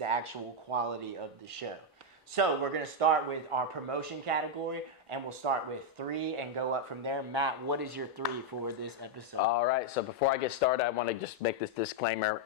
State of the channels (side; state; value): both; normal; correlation 0.00